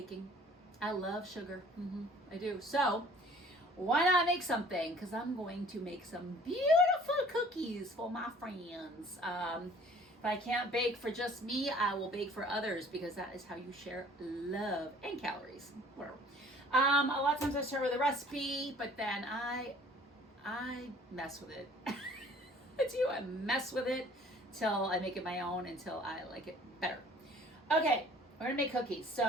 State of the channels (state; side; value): normal; both; correlation 0.52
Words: I love sugar. I do. So, why not make something? Because I'm going to make some beautiful cookies for my friends. If I can't bake for just me, I will bake for others because that is how you share love and calories. Whatever. A lot of times I start with a recipe, but then I mess with it. I do. I mess with it till I make it my own, until I like it better. Okay, we're gonna make cookies.